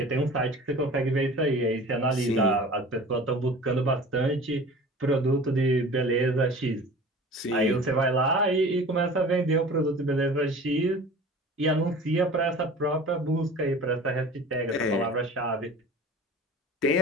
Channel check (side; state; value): both; normal; correlation 0.41